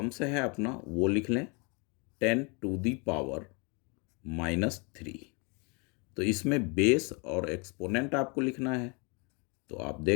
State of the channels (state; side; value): quieter; right; 32.5 dB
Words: है अपना वो लिख लें 10 टू दी पावर -3। तो इसमें बेस और एक्सपोनेंट आपको लिखना है। तो आप